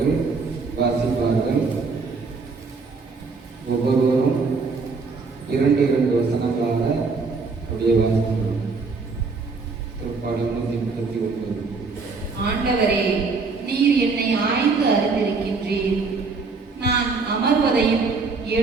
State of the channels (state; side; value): quieter; left; 4.4 dB